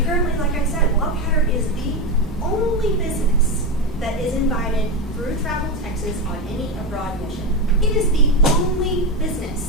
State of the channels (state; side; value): normal; both; correlation 0.14